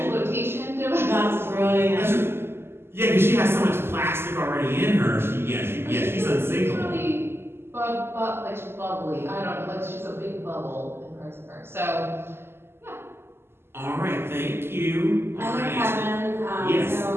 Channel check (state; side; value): late; left; 0.12 ms